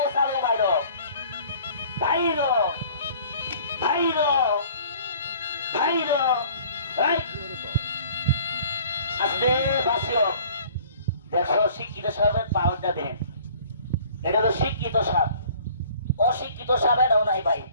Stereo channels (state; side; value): inverted; both; correlation -0.51